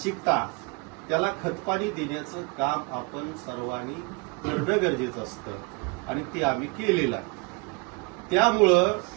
त्याला खतपाणी देण्याचं काम आपण सर्वांनी करणं गरजेचं असतं आणि ते आम्ही केलेलं आहे. त्यामुळं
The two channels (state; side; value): quieter; left; 29.6 dB